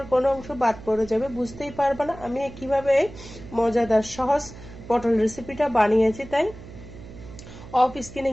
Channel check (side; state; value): right; noise; hum, 16 dB below the sound